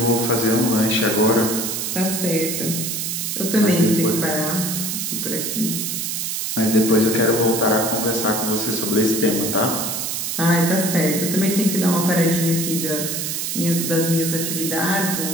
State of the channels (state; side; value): noise; right; hiss, 2 dB below the sound